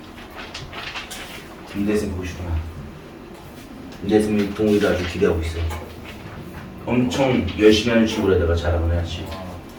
김대승 보고 싶구나. 김대승이 동우이도 아주 기대하고 있어. 엄청 열심히 하는 친구라다가 잘하고 해야지.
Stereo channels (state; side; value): identical; both; correlation 1.00